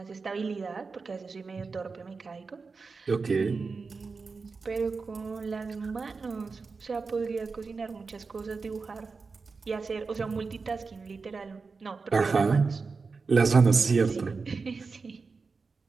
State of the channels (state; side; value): quieter; left; 4.5 dB